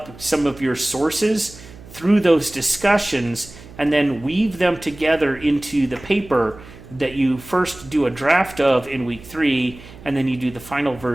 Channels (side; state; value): right; noise; hum, 19 dB below the sound